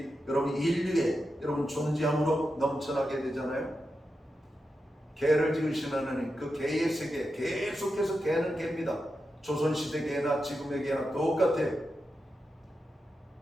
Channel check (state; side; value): normal; both; correlation 0.89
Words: 여러분 인류에 여러분 존재함으로 넘쳐나게 되잖아요. 개를 지으신 하나님 그 개의 세계 계속해서 개는 개입니다. 조선시대 개나 지금의 개나 똑같아요.